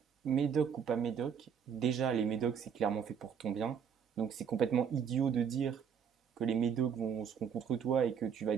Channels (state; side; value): quieter; left; 7.4 dB